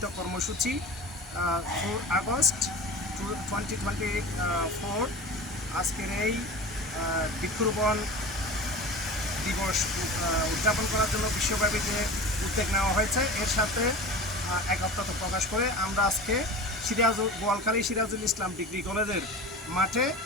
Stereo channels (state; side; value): normal; both; correlation 0.34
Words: কর্মসূচি 4 আগস্ট 2024 আজকের এই বৃক্ষরোপণ দিবস উদযাপন করার জন্য বিশ্বব্যাপী যে উদ্যোগ নেওয়া হয়েছে এর সাথে একত্রতা প্রকাশ করে আমরা আজকে বোয়ালখালী সিরাজুল ইসলাম ডিগ্রি কলেজের মাঠে